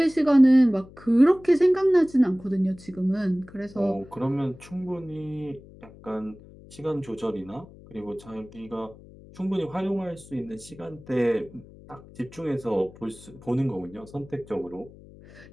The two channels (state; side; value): noise; left; hum, 21 dB below the sound